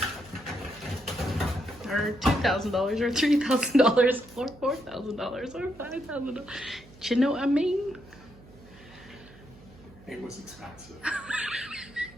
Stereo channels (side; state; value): right; noise; hum, 22 dB below the sound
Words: or $2,000 or $3,000 or $4,000 or $5,000. Do you know what I mean? It was expensive.